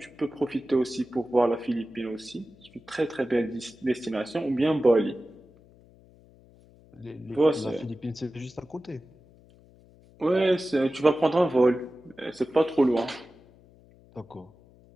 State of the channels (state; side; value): noise; left; hum, 26 dB below the sound